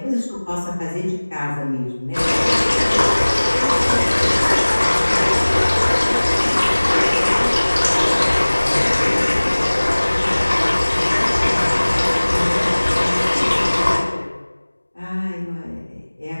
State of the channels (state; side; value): inverted; both; correlation -1.00